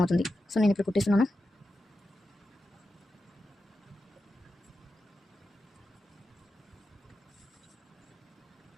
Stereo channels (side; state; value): both; normal; correlation 0.90